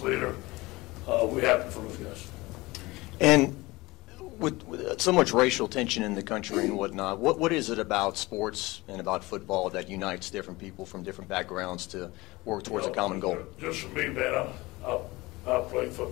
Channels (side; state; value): right; quieter; 21.3 dB